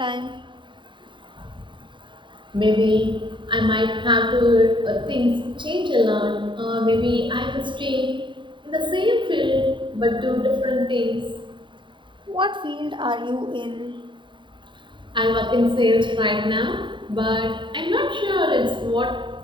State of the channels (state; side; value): late; left; 0.23 ms